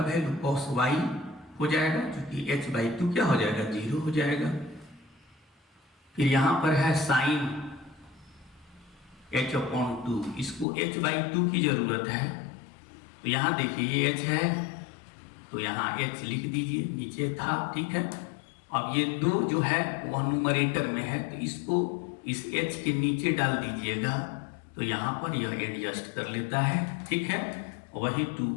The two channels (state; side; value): drops out; right; at 10.7 s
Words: वैल्यू cos y हो जाएगा, क्योंकि h बाई 2 क्या हो जाएगा जीरो हो जाएगा। फिर यहाँ पर है साइन h अपॉन 2, इसको h बाई 2 की जरूरत है, तो यहाँ देखिए ये h है तो यहाँ h लिख दीजिए, नीचे था, ठीक है। अब ये 2 जो है वह न्यूमरेटर में है, तो इसको इस h के नीचे डाल दीजिएगा, तो यहाँ पर यह एडजस्ट कर लेता है, ठीक है। वही 2